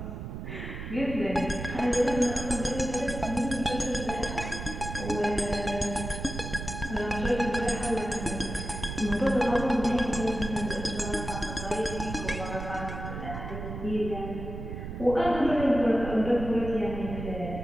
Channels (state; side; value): noise; right; rumble, 7 dB below the sound